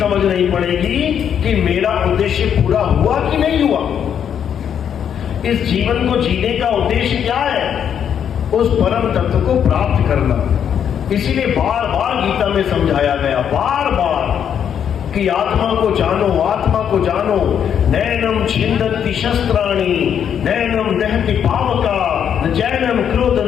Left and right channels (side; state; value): right; quieter; 8.6 dB